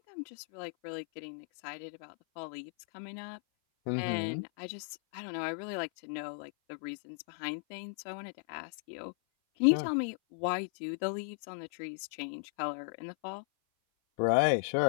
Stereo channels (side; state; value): right; silent; 54 dB below the other